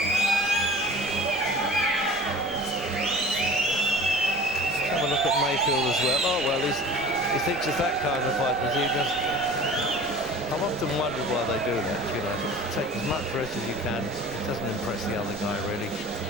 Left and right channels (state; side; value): noise; right; rumble, 21 dB below the sound